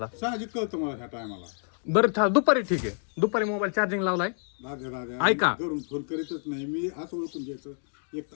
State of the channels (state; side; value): silent; right; digital silence